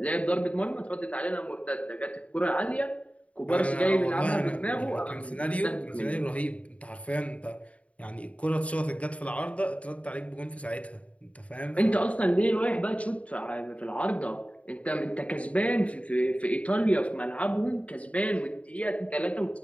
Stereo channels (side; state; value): right; late; 0.065 ms